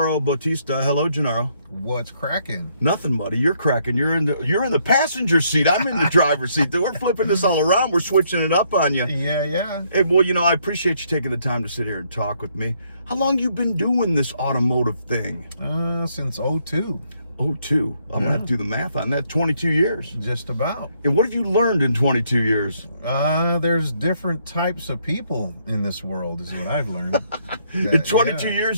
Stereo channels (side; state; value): both; inverted; correlation -0.71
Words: Bautista. Hello, Genaro. What's cracking? Nothing, buddy. You're cracking. You're in the passenger seat. I'm in the driver's seat. We're flipping this all around. We're switching it up on you. Yeah. Hey, well, I appreciate you taking the time to sit here and talk with me. How long you been doing this automotive thing? Since 02. 02. I'm gonna have to do the math on that. 22 years. Just about. And what have you learned in 22 years? There's different types of people in this world, is what I've learned. In 22